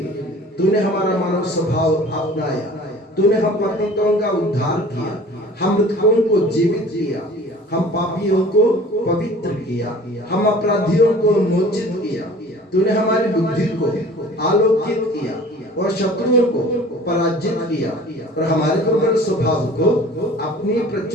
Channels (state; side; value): normal; both; correlation 0.46